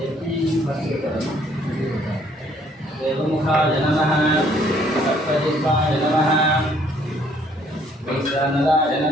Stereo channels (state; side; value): normal; both; correlation 0.63